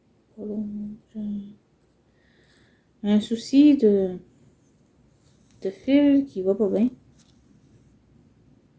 Un souci de fil qui va pas bien.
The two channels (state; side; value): identical; both; correlation 1.00